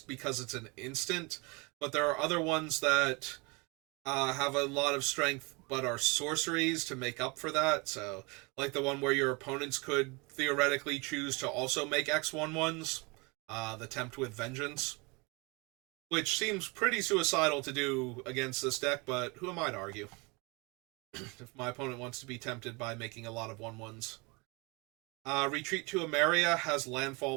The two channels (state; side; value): quieter; left; 28.1 dB